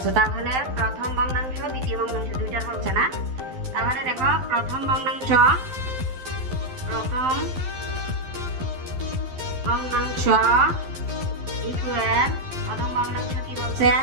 তাহলে প্রথম ভগ্নাংশ দ্বিতীয় ভগ্নাংশ দুইটার বলছে না। তাহলে দেখো প্রথম ভগ্নাংশ ইকুয়াল, প্রথম ভগ্নাংশ কি বলছে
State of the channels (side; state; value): left; late; 12 ms